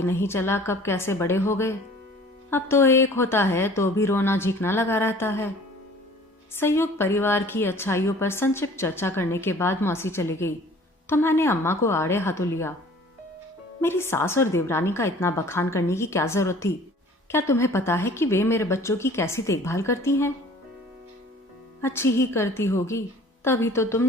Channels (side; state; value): both; normal; correlation 0.49